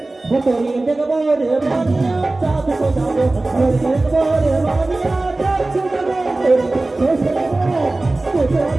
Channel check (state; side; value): quieter; left; 3.0 dB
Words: তোরে দেখবো রে মানিয়া চাঁদ সোজাবো তোরে দেখবো রে মানিয়া চাঁদ সোজাবো।